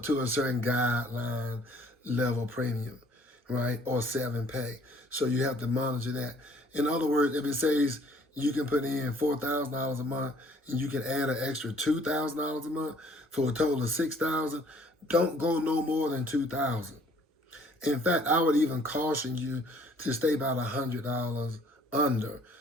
to a certain guideline level premium, right? Or 7-pay. So you have to monitor that. In other words, if it says you can put in $4,000 a month and you can add an extra $2,000 a month for a total of $6,000, don't go no more than $2,000. In fact, I would even caution you to stay about $100 under,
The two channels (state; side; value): normal; both; correlation 0.59